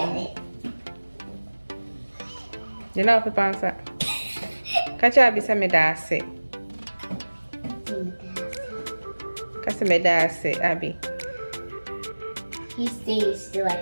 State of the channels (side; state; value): both; inverted; correlation -1.00